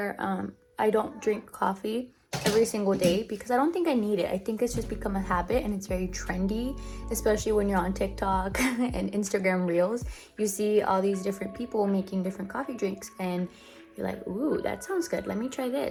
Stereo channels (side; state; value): both; identical; correlation 1.00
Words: I don't drink coffee every single day because I don't think I need it. I think it's just become a habit and it's very trendy, especially when you're on TikTok and Instagram Reels. You see all these different people making different coffee drinks and you're like, ooh, that sounds good. Let me try